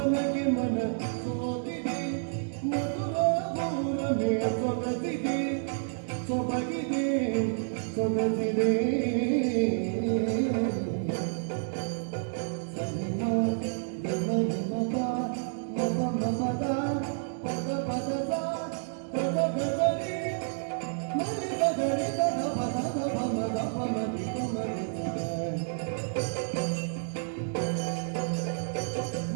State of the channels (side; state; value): left; silent; digital silence